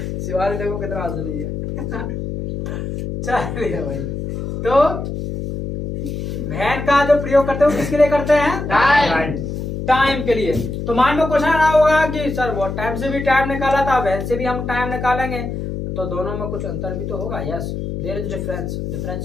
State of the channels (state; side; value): noise; left; hum, 5 dB below the sound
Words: शिवाली देखो कितना हंस है। चलिए भाई, तो वैन का जो प्रयोग करते हैं वो किसके लिए करते हैं? Time. टाइम के लिए। तो मान लो क्वेश्चन आ होगा कि सर वो टाइम से भी टाइम निकाला था, वैन से भी हम टाइम निकालेंगे, तो दोनों में कुछ अंतर भी तो होगा। Yes, there is difference.